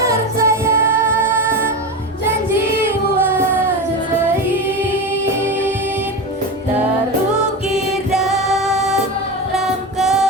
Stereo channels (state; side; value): normal; both; correlation 0.21